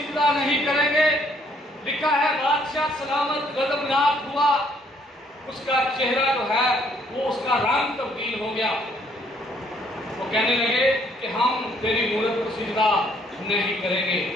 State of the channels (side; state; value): both; normal; correlation 0.66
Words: नहीं करेंगे। लिखा है बादशाह सलामत गजबनाक हुआ, उसका चेहरा जो है वो उसका रंग तब्दील हो गया। वो कहने लगे कि हम तेरी मूरत को सिजदा नहीं करेंगे।